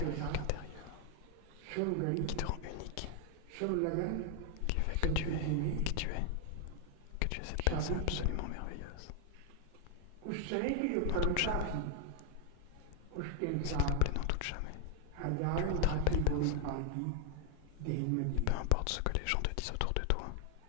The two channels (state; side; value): different; both; correlation 0.00